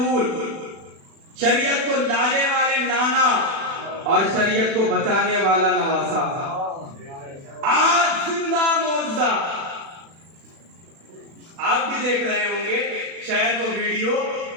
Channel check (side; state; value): left; late; 36 ms